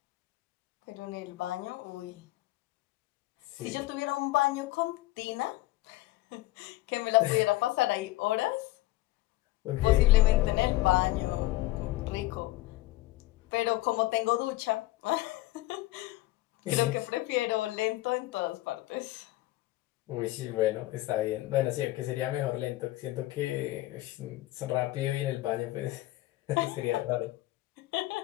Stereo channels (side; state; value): right; quieter; 17.7 dB